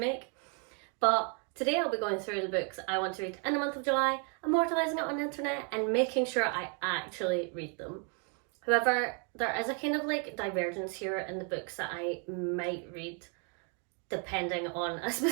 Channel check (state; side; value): quieter; left; 38.4 dB